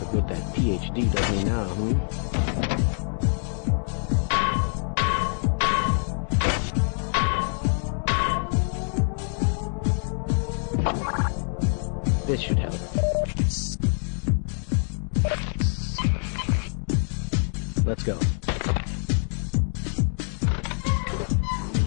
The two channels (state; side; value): silent; right; digital silence